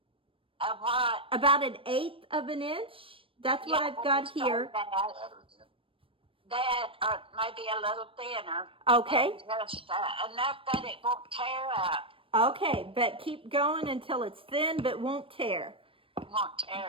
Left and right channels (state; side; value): late; left; 0.26 ms